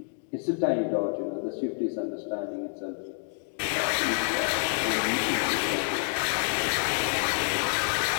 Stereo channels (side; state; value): right; silent; 59 dB below the other